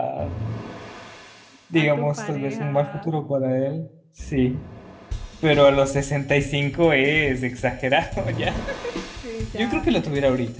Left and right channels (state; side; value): identical; both; correlation 1.00